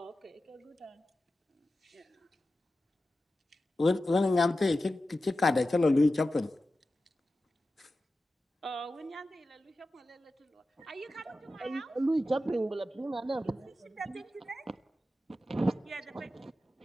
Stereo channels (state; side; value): normal; both; correlation 0.93